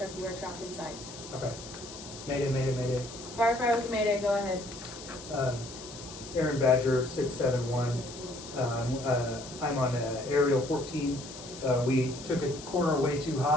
You are trapped inside. Okay. Mayday, mayday, mayday. Firefighter with a mayday. Go ahead. Aaron Badger, 671. I'm on aerial 14. We took a corner way too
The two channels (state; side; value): noise; left; hiss, 14 dB below the sound